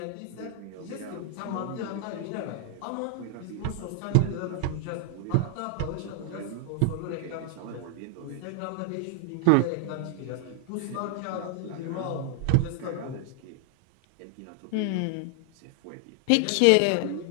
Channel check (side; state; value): both; different; correlation 0.00